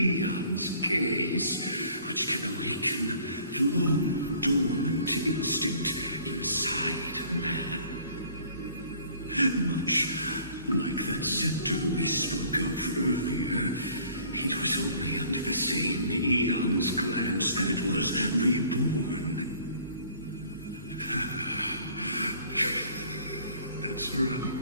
gaze, which can awaken the long-dormant instinct inside a man. Much like that scepter we spoke of earlier, it was only under the same eon's glance that it was reborn. That's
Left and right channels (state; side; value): inverted; both; correlation -0.54